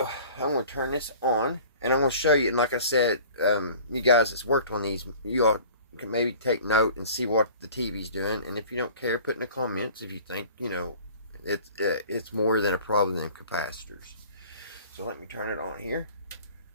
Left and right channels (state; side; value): inverted; both; correlation -0.46